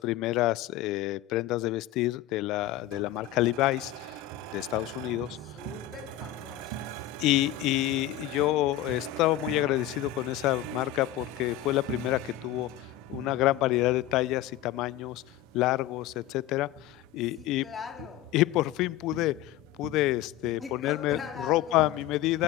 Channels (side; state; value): right; quieter; 13.1 dB